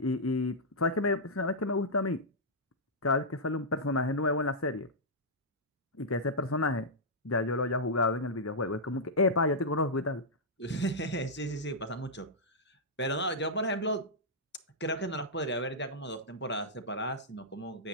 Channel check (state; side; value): normal; both; correlation -0.10